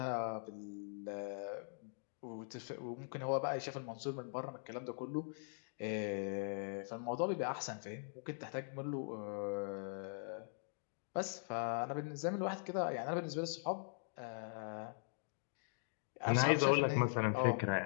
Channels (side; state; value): right; silent; digital silence